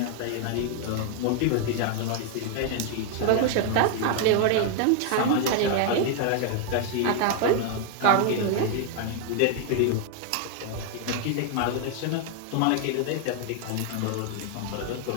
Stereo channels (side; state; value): both; different; correlation 0.00